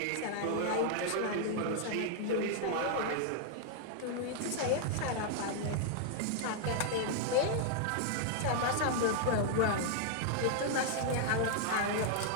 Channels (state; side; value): different; both; correlation -0.01